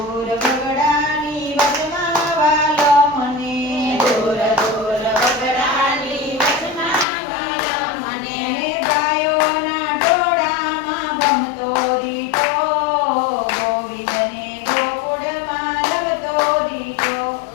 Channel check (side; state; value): right; drops out; at 7.1 s